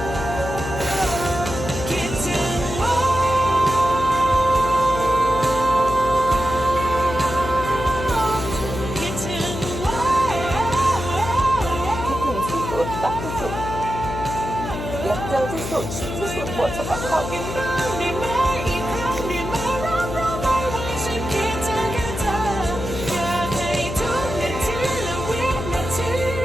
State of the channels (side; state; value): left; noise; hum, 6 dB below the sound